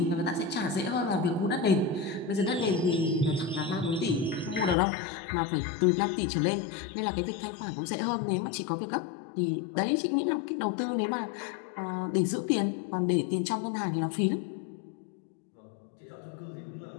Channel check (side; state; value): right; drops out; at 4.8 s